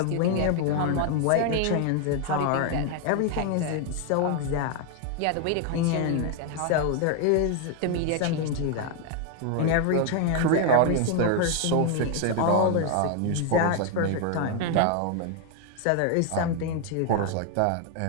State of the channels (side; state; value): both; different; correlation 0.00